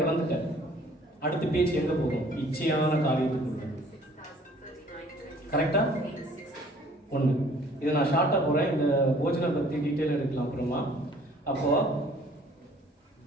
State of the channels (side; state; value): both; normal; correlation 0.55